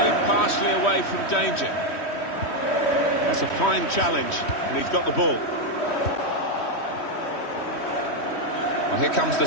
Away from danger. That's a fine challenge, and he's got the ball. Well, here comes the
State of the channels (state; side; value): late; right; 3.1 ms